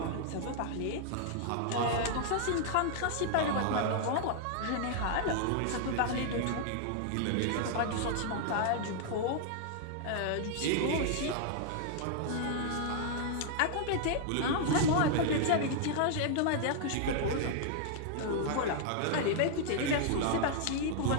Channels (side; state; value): both; different; correlation -0.01